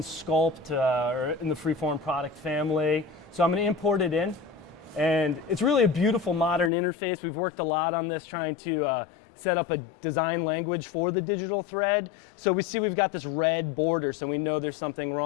or in the Freeform product family. So I'm going to import it in, and it's really a beautiful modern interface. We've worked a lot on this, trying to set up a design language for the digital thread. So we see we've got this red border, so we know there's something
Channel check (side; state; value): right; drops out; at 6.7 s